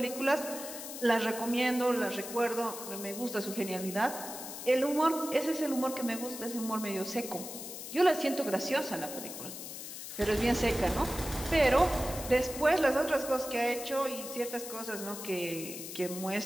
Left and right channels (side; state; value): left; noise; hiss, 9 dB below the sound